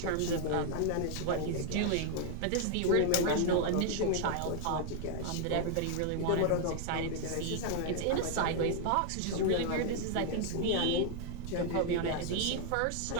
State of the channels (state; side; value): different; both; correlation 0.00